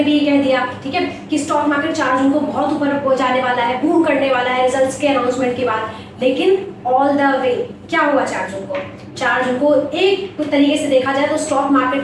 भी ये कह दिया, ठीक है, कि स्टॉक मार्केट 4 जून को बहुत ऊपर हो जाने वाला है, बूम करने वाला है रिजल्ट्स के अनाउंसमेंट के बाद। लेकिन ऑल द वे क्या हुआ 4 जून को? 4 जून को एक तरीके से देखा जाए तो स्टॉक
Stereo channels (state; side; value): identical; both; correlation 1.00